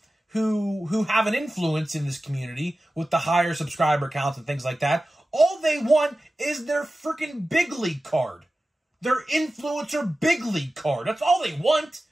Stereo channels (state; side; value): normal; both; correlation 0.95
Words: who have an influence in this community with the higher subscriber counts and things like that, all they want is their freaking big league card. Their influencer big league card. That's all they want.